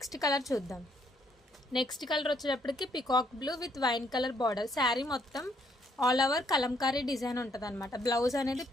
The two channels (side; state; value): both; normal; correlation 0.70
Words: కలర్ చూద్దాం. నెక్స్ట్ కలర్ వచ్చేటప్పటికి peacock blue with wine colour border. Sari మొత్తం ఆల్ ఓవర్ కలంకారీ డిజైన్ ఉంటుంది అనమాట. బ్లౌజ్ అనేది